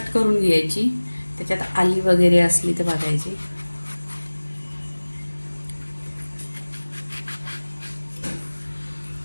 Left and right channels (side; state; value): both; inverted; correlation -1.00